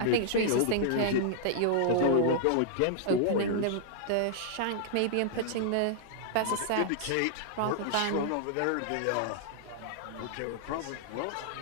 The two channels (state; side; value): different; both; correlation -0.01